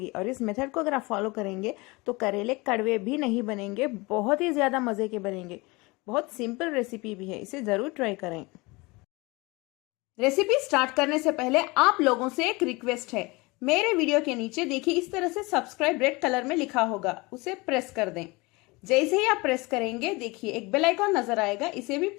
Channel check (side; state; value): right; quieter; 24.7 dB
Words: और इस मेथड को अगर आप फॉलो करेंगे तो करेले कड़वे भी नहीं बनेंगे, बहुत ही ज़्यादा मज़े के बनेंगे। बहुत सिंपल रेसिपी भी है, इसे ज़रूर ट्राई करें। रेसिपी स्टार्ट करने से पहले आप लोगों से एक रिक्वेस्ट है। मेरे वीडियो के नीचे देखिए, इस तरह से सब्सक्राइब रेड कलर में लिखा होगा, उसे प्रेस कर दें। जैसे ही आप प्रेस करेंगे, देखिए एक बेल आइकॉन नजर आएगा, इसे भी